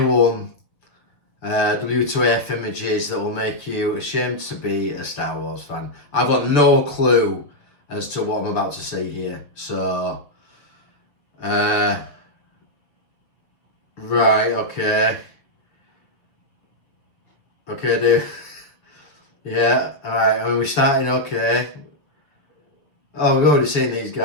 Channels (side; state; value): right; late; 6.7 ms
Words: W2F images that will make you ashamed to be a Star Wars fan. I've got no clue as to what I'm about to see here. So, right, okay, dude. Yeah, alright, I mean, we're starting okay. Oh, we've already seen these